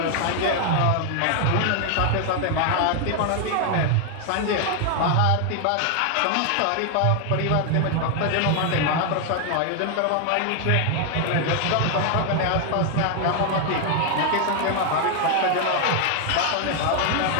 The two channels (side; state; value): both; different; correlation 0.00